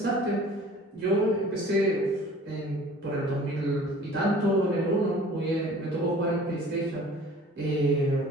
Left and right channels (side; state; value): both; normal; correlation 0.48